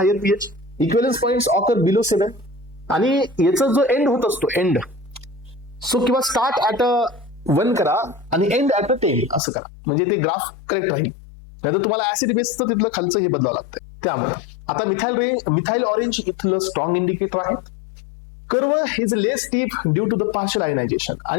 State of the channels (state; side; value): drops out; right; at 9.4 s